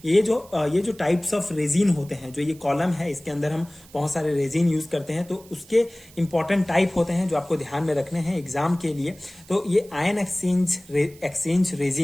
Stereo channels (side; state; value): right; noise; hiss, 24 dB below the sound